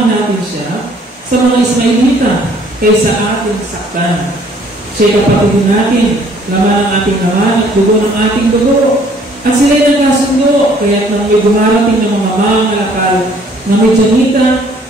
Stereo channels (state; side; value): normal; both; correlation 0.59